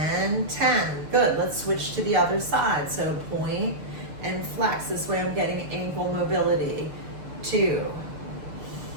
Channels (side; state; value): left; late; 6.7 ms